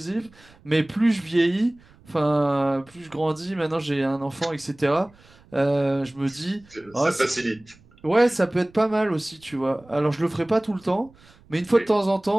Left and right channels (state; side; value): noise; right; rumble, 27 dB below the sound